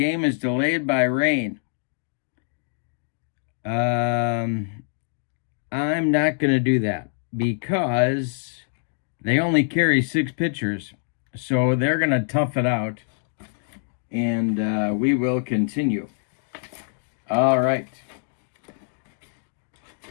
is delayed by rain. I'm not going to do that because they only carry 6 pitchers. So they're going to tough it out. And we will continue. All right.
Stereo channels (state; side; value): silent; right; digital silence